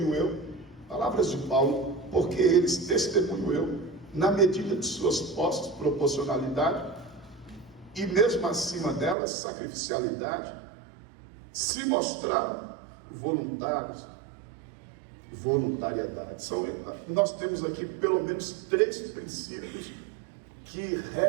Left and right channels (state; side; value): drops out; left; at 9.2 s